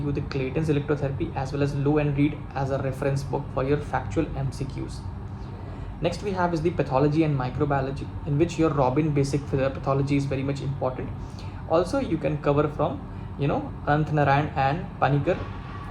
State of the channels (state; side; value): identical; both; correlation 1.00